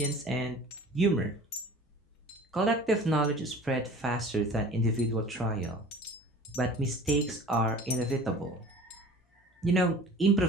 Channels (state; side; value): normal; both; correlation 0.43